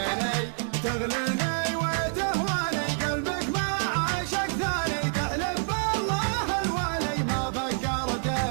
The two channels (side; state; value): left; silent; 60 dB below the other